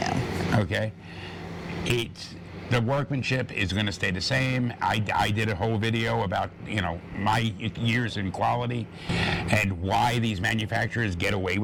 Okay? The workmanship is going to stay the same. I did a whole video about, my years in quality and why these manufacturers get away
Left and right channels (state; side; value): identical; both; correlation 1.00